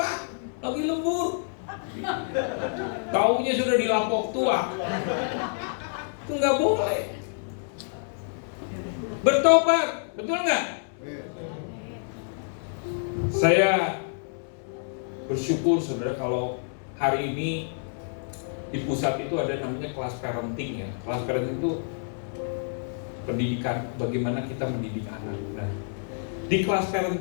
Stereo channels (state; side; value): silent; right; 60 dB below the other